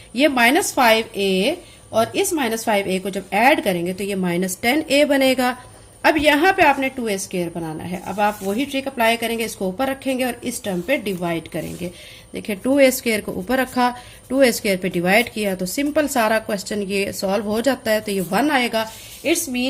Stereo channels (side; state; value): both; identical; correlation 1.00